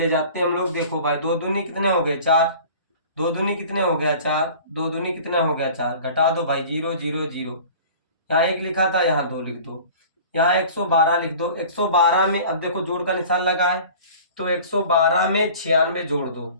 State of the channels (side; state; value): both; inverted; correlation -0.44